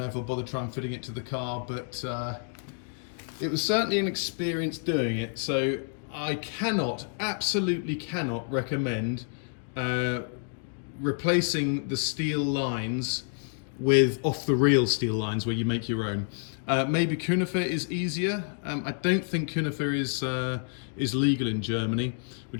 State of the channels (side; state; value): right; silent; 59 dB below the other